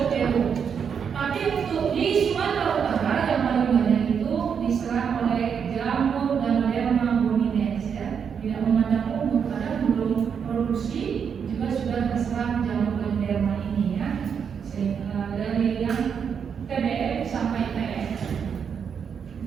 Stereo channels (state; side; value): quieter; left; 7.1 dB